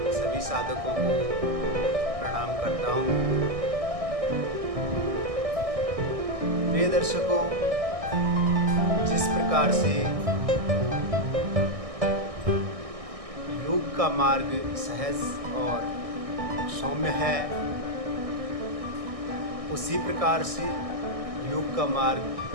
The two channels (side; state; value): left; late; 1.6 ms